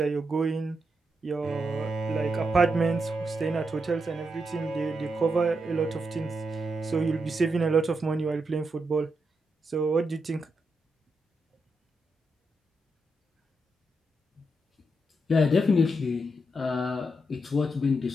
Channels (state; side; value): normal; both; correlation 0.83